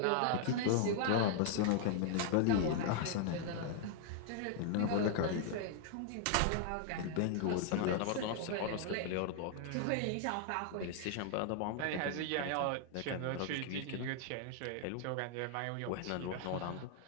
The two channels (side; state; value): both; different; correlation 0.00